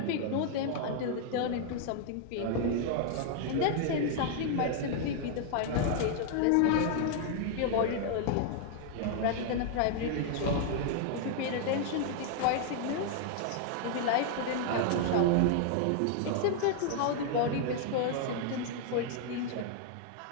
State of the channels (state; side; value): different; both; correlation 0.00